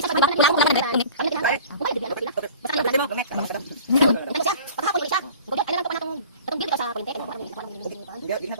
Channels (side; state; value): both; inverted; correlation -0.44